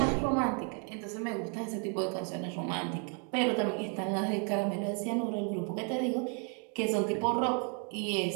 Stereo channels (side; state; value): left; quieter; 39.2 dB